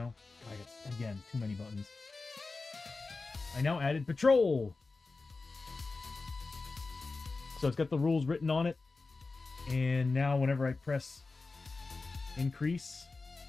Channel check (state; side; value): quieter; right; 3.8 dB